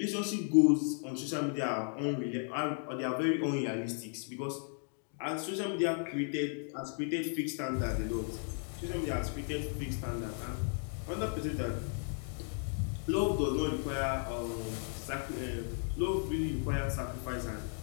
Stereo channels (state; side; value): silent; right; 54 dB below the other